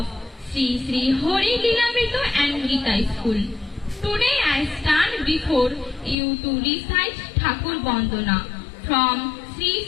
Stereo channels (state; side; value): drops out; right; at 6.2 s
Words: Sri Hori Lilamrito and Gita School. Today I stand before you to recite Thakur Bandana from